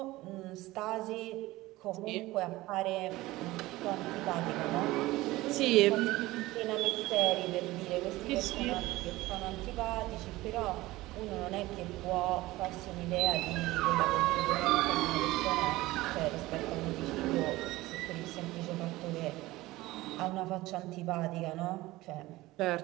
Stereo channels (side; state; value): left; quieter; 18.6 dB